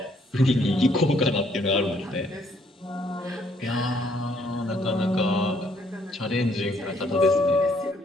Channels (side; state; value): both; normal; correlation 0.68